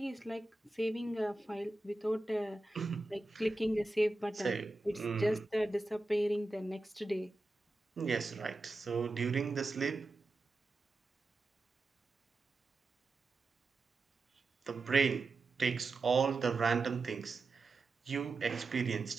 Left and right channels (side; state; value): left; quieter; 3.1 dB